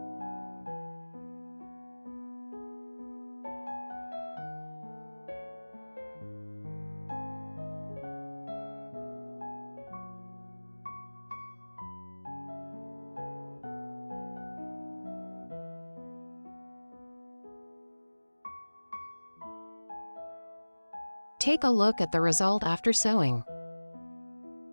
Take a look at the result after sewing.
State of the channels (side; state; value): both; inverted; correlation -1.00